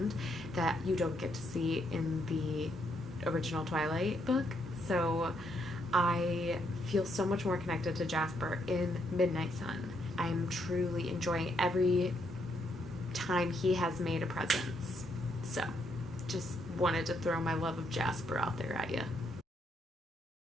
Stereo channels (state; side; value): normal; both; correlation 0.75